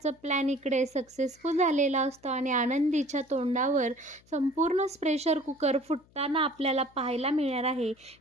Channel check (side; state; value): left; noise; hum, 30 dB below the sound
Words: प्लॅन इकडे सक्सेसफुल झालेला असतो आणि आनंदीच्या तोंडावर संपूर्ण प्रेशर कुकर फुटताना आपल्याला पाहायला मिळणार आहे.